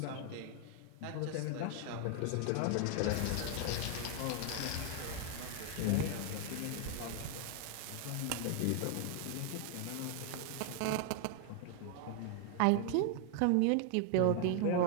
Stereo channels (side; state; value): both; different; correlation 0.00